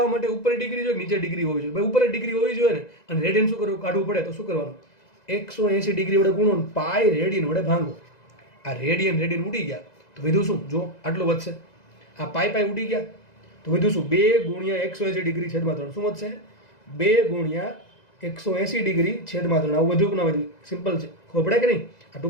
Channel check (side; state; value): right; late; 2.0 ms